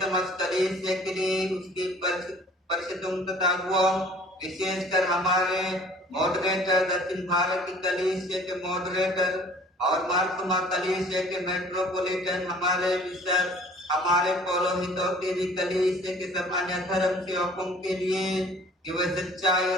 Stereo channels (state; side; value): normal; both; correlation 0.51